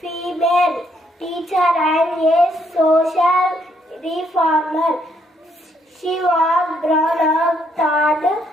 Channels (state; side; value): normal; both; correlation 0.72